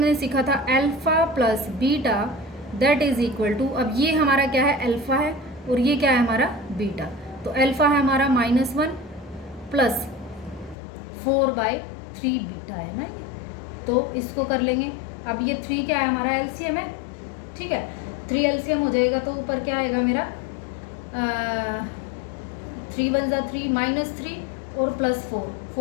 सीखा था alpha plus beta that is equal to, अब ये हमारा क्या है, अल्फ़ा है, और ये क्या है हमारा बीटा, तो अल्फ़ा है हमारा -1 प्लस 4/3 बीटा है ना ये, तो इसको कर लेंगे। अब ये 3 क्या है हमारा, एलसीएम है, ठीक है, 3 एलसीएम हो जाएगा, तो ऊपर क्या आएगा मेरा 3 1 ज़ा 3 -3 और +4,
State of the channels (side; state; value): right; drops out; at 10.8 s